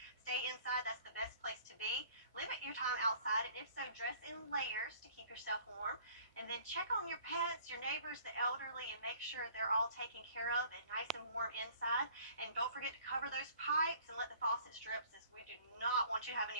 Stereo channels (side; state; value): both; inverted; correlation -0.54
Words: stay inside. That's the best place to be. Limit your time outside, and if so, dress in layers to keep yourself warm. And then check on your pets, your neighbors, the elderly, and make sure they're all taken care of and nice and warm inside. And don't forget to cover those pipes and let the faucets drip, since we do not want you to have